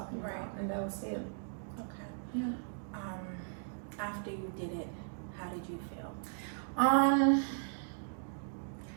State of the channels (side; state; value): left; silent; digital silence